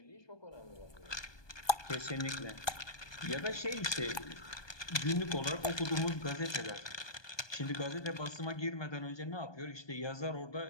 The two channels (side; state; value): right; late; 1.2 ms